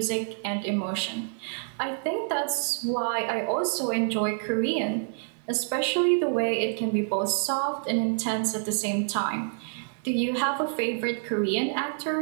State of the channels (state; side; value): silent; left; 60 dB below the other